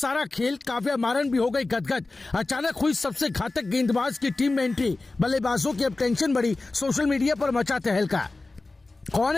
खेल। काव्या मारन भी हो गई गदगद। अचानक हुई सबसे घातक गेंदबाज की टीम में एंट्री। बल्लेबाजों की अब टेंशन बढ़ी। सोशल मीडिया पर मचा तहलका। कौन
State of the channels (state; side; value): quieter; right; 3.3 dB